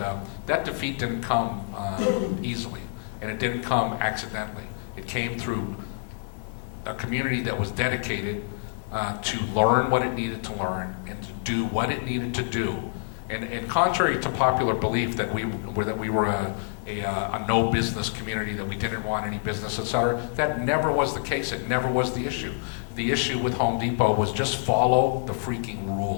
that defeat didn't come easily, and it didn't come accidentally. It came through a community that was dedicated to learn what it needed to learn and to do what it needed to do. And contrary to popular belief that we were a no business community, that we didn't want any business, etc., that never was the case. It never was the issue. The issue with Home Depot was just follow the freaking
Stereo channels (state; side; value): silent; right; digital silence